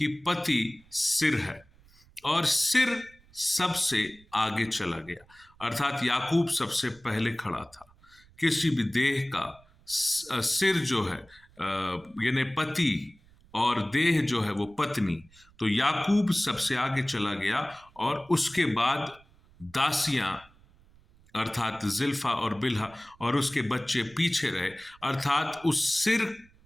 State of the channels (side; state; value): right; noise; rumble, 28 dB below the sound